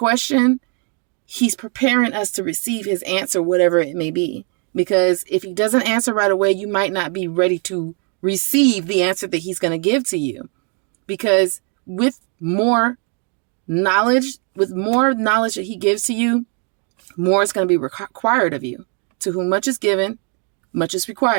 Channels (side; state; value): left; quieter; 39.0 dB